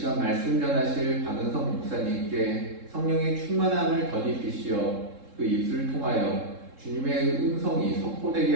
말씀 전하실 박은성 목사님께 성령의 충만함을 덧입히시어 그 입술을 통하여 주님의 음성이 선포되게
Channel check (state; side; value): late; left; 3.7 ms